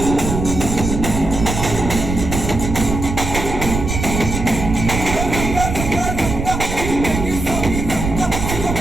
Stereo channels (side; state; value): right; noise; rumble, 4 dB below the sound